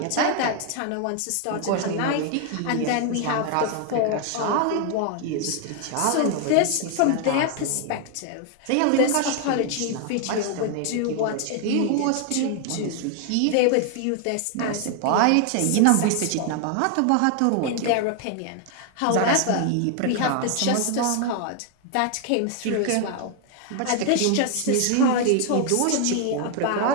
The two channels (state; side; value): different; both; correlation 0.00